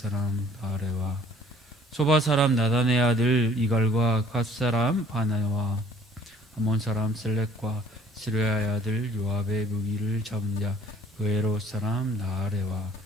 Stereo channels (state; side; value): normal; both; correlation 0.56